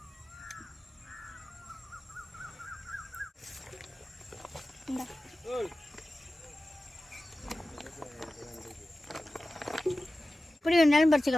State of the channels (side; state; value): both; normal; correlation 0.95